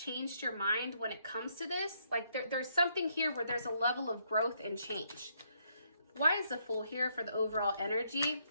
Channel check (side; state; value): both; inverted; correlation -0.74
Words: your mind when it comes to this. Like there's something here where there's a level of growth and change. Why is the Fool here for the overall energy?